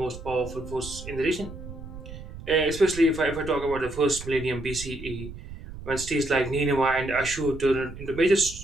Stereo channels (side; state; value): right; noise; rumble, 12 dB below the sound